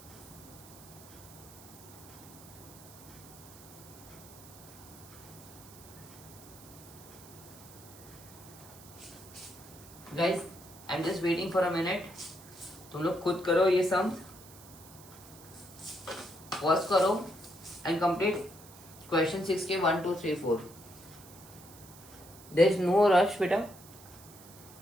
guys I am just waiting for a minute. तुम लोग खुद करो ये सम, पॉज करो एंड कंप्लीट क्वेश्चन 6 के 1 2 3 4. देयर इज नो रश बेटा,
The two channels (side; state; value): right; noise; hiss, 19 dB below the sound